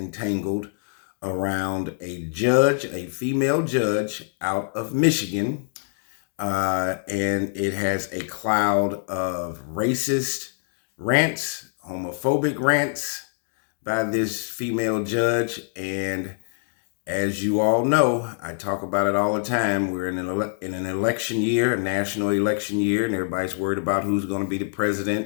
around a judge, a female judge out of Michigan. And it has a cloud of racist rants, homophobic rants by this female judge. And as you all know, I talk about it all the time. We're in an election year, a national election year, and everybody's worried about who's going to be the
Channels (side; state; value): right; silent; digital silence